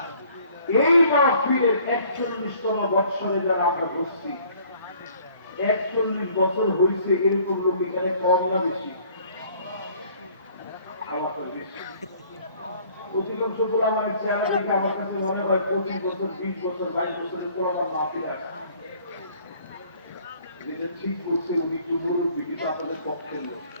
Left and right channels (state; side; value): inverted; both; correlation -0.57